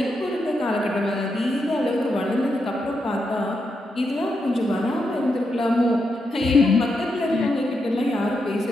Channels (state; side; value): normal; both; correlation 0.84